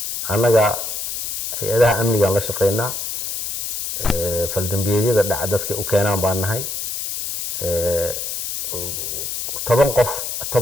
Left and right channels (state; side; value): noise; left; hiss, 4 dB below the sound